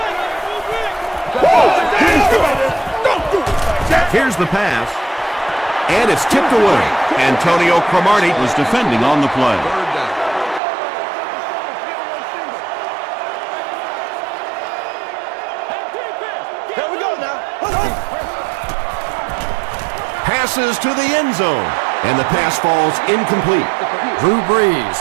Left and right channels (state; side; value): drops out; left; at 10.6 s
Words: Here's the pass. And it's tipped away. Antonio Cromartie was defending on the play. Passes to the end zone. And the pass falls incomplete. Drew